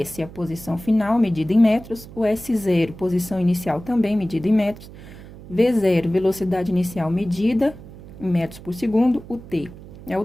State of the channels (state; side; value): noise; right; hum, 17 dB below the sound